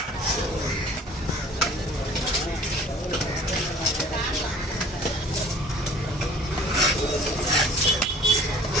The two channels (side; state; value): both; normal; correlation 0.49